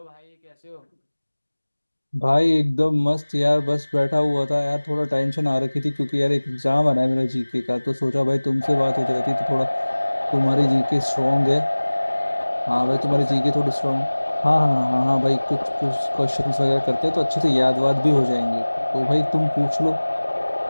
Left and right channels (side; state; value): both; inverted; correlation -1.00